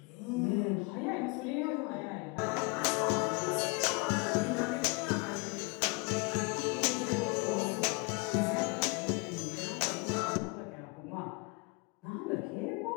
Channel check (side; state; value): right; quieter; 29.5 dB